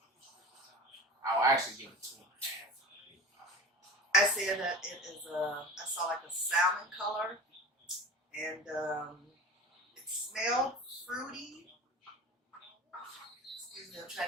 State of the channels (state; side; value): normal; both; correlation 0.34